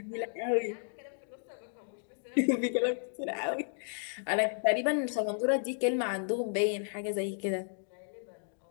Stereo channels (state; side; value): silent; right; digital silence